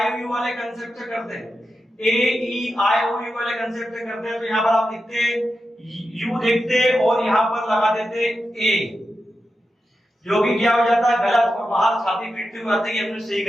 ओ यू वाले कांसेप्ट से करते हैं, ए ई आई ओ यू वाले कांसेप्ट से करते हैं, तो यहाँ पर आप लिखते यू देखते और यहाँ पर लगा देते ए, जो कि क्या हो जाता है गलत, और बाहर छाती पीटते हुए आते हैं अपने सही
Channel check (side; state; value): both; normal; correlation 0.90